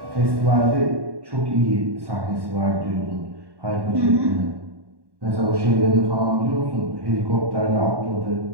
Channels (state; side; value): late; left; 1.1 ms